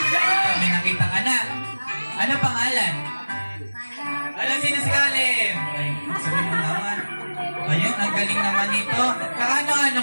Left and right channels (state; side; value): inverted; both; correlation -1.00